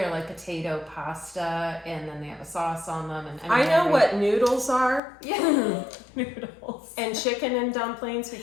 like potato pasta, and then they have a sauce on them. And I know what noodles are. Yeah, noodles. And chicken and dumplings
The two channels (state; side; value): drops out; right; at 5.0 s